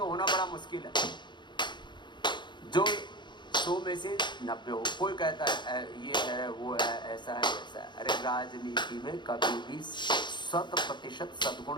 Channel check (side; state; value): right; late; 0.22 ms